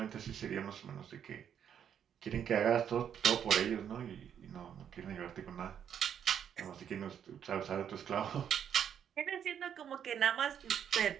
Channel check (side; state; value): left; quieter; 8.7 dB